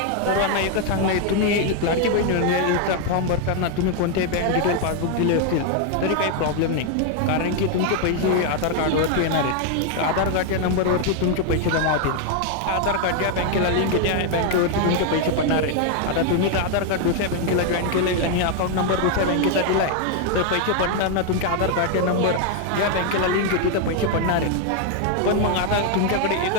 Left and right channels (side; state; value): both; different; correlation 0.01